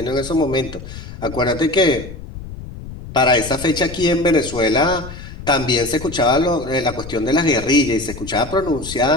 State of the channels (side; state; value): left; noise; rumble, 12 dB below the sound